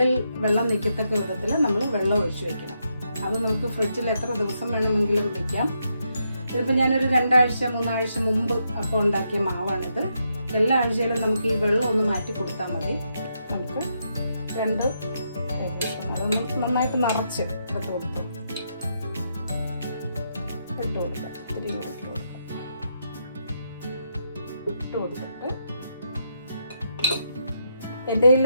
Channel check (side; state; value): both; inverted; correlation -0.80